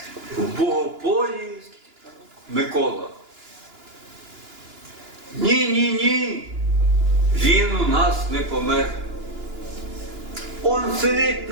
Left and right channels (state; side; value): late; left; 2.9 ms